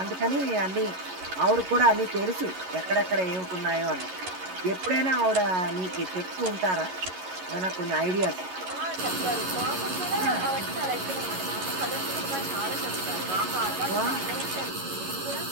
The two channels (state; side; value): late; left; 11 ms